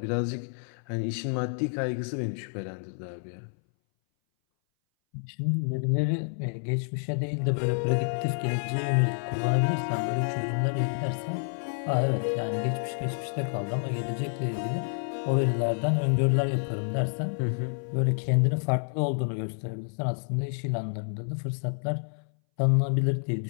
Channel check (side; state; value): right; silent; 59 dB below the other